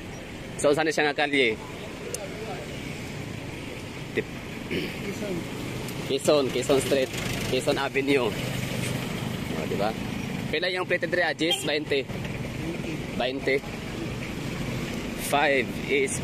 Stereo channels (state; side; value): identical; both; correlation 1.00